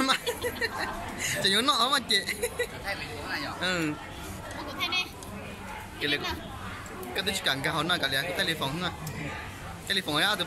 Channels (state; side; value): identical; both; correlation 1.00